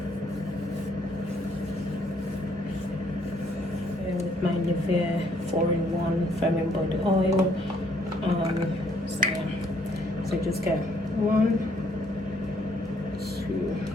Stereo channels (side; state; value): both; normal; correlation 0.67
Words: With my Nivea 4-in-1 firming body oil. So just get 1, 2.